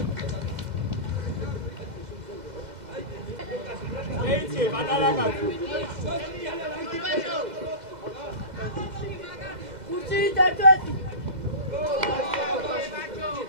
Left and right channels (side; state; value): left; late; 2.0 ms